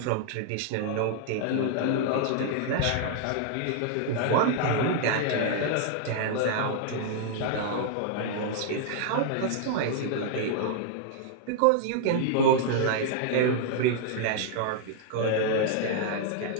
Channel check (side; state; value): both; different; correlation -0.01